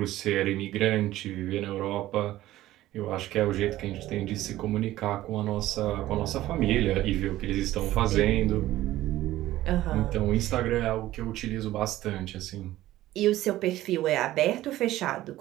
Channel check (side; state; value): left; quieter; 15.1 dB